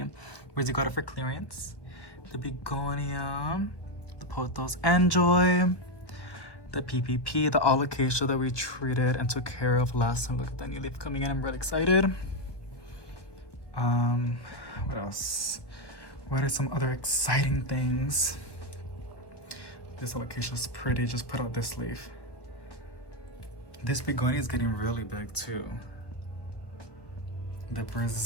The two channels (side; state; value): right; late; 1.2 ms